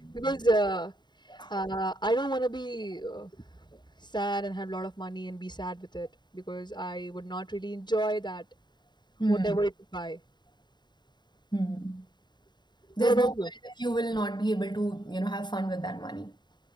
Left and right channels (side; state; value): right; late; 0.21 ms